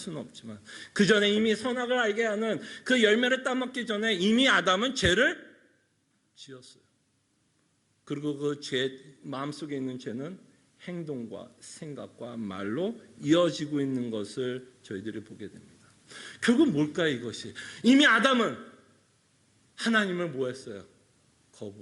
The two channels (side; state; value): both; identical; correlation 1.00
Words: 없지만, 그 전에 이미 선악을 알게 하는 그 열매를 따먹기 전에 이미 아담은 죄를 지었어요. 그리고 그 죄, 마음속에 있는 죄는 행동과 생각과 말로 이어지고 있는 것을 저희들이 보게 됩니다. 결국 뭘까요, 이것이? 이미 아담은 하나님을 뭐 했어요?